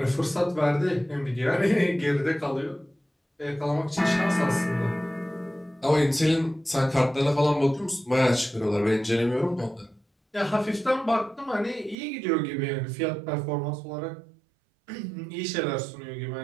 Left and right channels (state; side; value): drops out; left; at 12.0 s